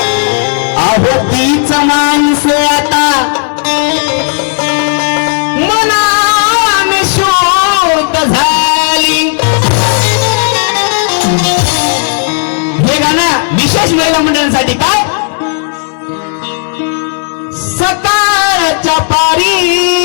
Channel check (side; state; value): right; silent; 55 dB below the other